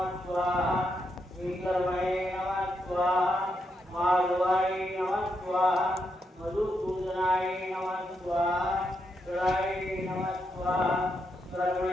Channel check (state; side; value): normal; both; correlation 0.81